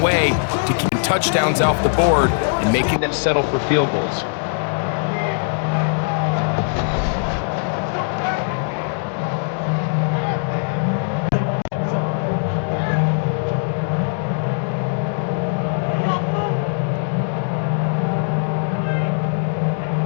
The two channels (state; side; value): silent; right; 65 dB below the other